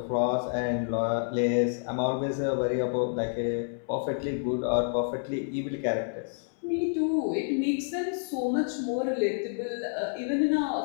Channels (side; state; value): right; silent; 59 dB below the other